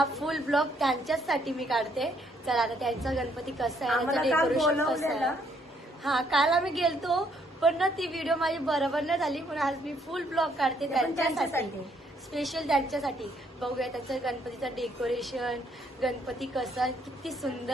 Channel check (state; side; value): normal; both; correlation 0.69